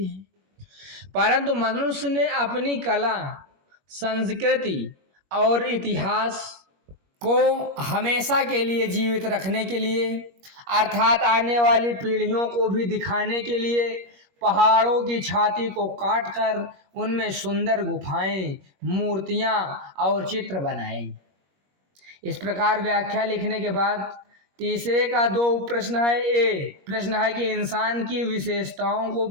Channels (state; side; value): late; left; 21 ms